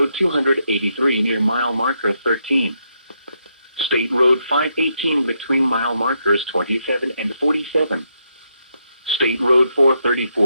283 near mile marker 13. State Road 518 between mile markers 27 and 47. State Road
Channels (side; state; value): both; inverted; correlation -0.79